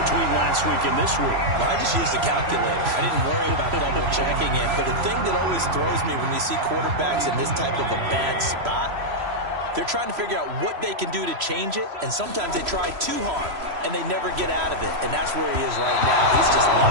between last week and this week. Well, I just used the calculator. I didn't worry about double-checking it. But the thing that always throws me when you see quarterbacks in this type of a bad spot, they're trying to figure out what they can do to change it, and sometimes they try too hard, and they never get out of it. And that's where he is right now. He's just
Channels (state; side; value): late; left; 3.0 ms